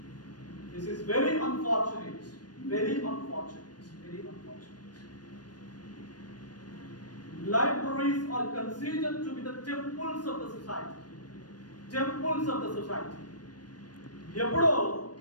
This is very unfortunate. Libraries are considered to be the temples of the society. ఎప్పుడో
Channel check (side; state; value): right; late; 0.69 ms